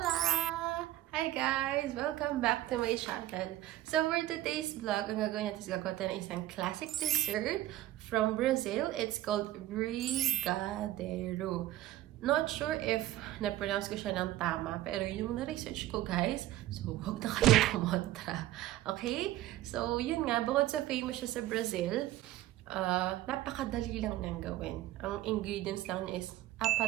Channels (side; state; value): left; quieter; 15.1 dB